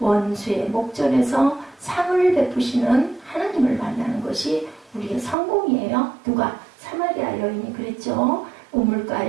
목전에서 상을 베푸시는 하나님을 만나는 것이 우리의 성공이에요. 누가? 사마리아 여인이 그랬죠.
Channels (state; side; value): drops out; left; at 5.4 s